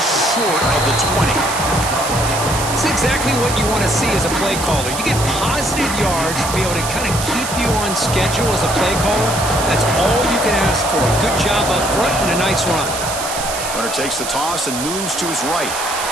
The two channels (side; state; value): right; noise; hiss, 6 dB below the sound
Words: short of the 20. It's exactly what you want to see as a play caller. You get positive yards to be able to kind of keep you on schedule as a play caller. That's all you can ask for. Good job up front and a nice run. Runner takes the toss and moves to his right.